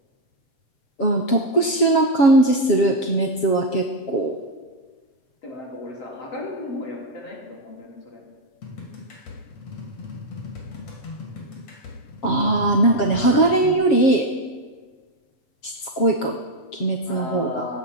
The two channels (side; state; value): right; late; 7.3 ms